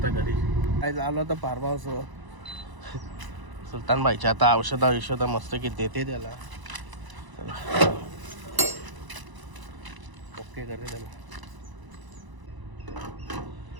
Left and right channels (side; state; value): left; late; 1.0 ms